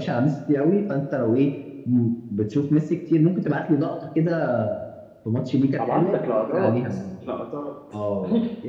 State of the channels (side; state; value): both; identical; correlation 1.00